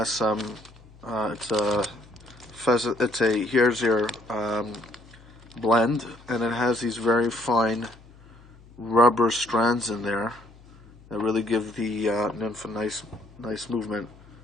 some it's a here's your blend, and it has these very fine rubber strands in there that really give the nymph a nice movement.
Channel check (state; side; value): noise; left; hum, 24 dB below the sound